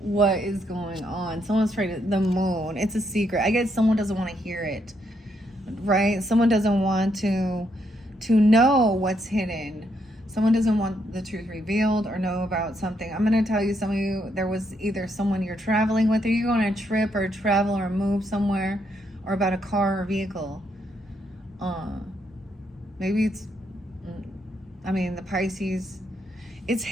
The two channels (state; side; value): normal; both; correlation 0.76